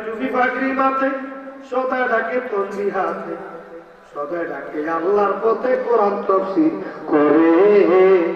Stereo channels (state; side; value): identical; both; correlation 1.00